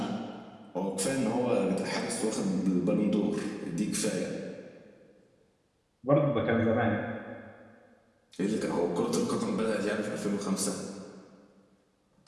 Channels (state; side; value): identical; both; correlation 1.00